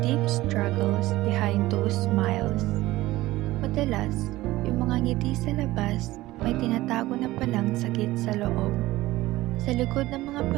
deep struggles behind those smiles. Madalas, yung mga ngiti sa labas may tinatago na palang sakit sa loob. Sa likod ng mga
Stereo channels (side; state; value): left; quieter; 17.5 dB